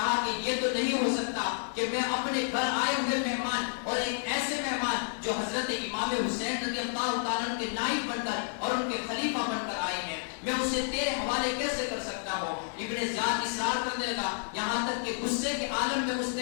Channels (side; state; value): right; silent; 58 dB below the other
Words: کہ یہ تو نہیں ہو سکتا کہ میں اپنے گھر آئے ہوئے مہمان اور ایک ایسے مہمان جو حضرت امام حسین رضی اللہ تعالیٰ عنہ کے نائب بن کر اور ان کے خلیفہ بن کر آئے ہیں, میں اسے تیرے حوالے کیسے کر سکتا ہوں؟ ابن زیاد اصرار کرنے لگا یہاں تک کہ غصے کے عالم میں اس